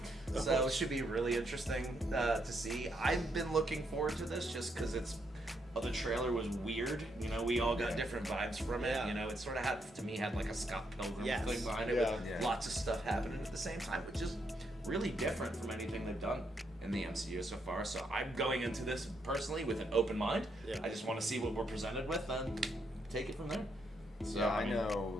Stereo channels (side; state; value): both; normal; correlation 0.77